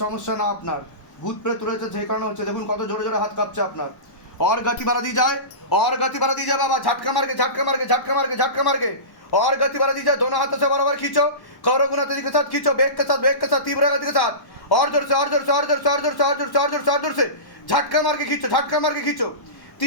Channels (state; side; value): late; right; 1.1 ms